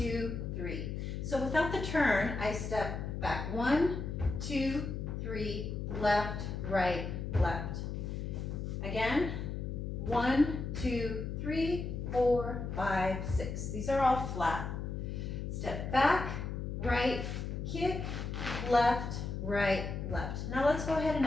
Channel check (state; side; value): noise; left; hum, 4 dB below the sound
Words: 3. So without the turn, I step back 1, 2, 3, left, right, left. Again, 1, 2, 3, 4, 5, 6. These are all flat. Step back, right, kick, left, right, left. Now let's go ahead and